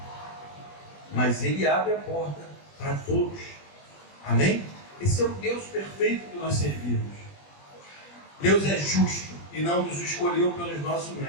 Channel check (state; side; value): late; right; 20 ms